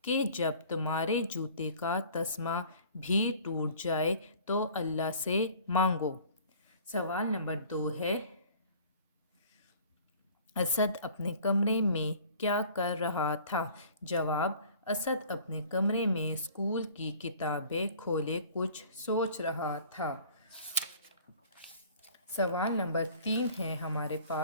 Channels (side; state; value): both; inverted; correlation -0.49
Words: کہ جب تمہارے جوتے کا تسمہ بھی ٹوٹ جائے تو اللہ سے مانگو۔ سوال نمبر 2 ہے، اسد اپنے کمرے میں کیا کر رہا تھا؟ جواب، اسد اپنے کمرے میں اسکول کی کتابیں کھولے کچھ سوچ رہا تھا۔ سوال نمبر 3 ہے ہمارے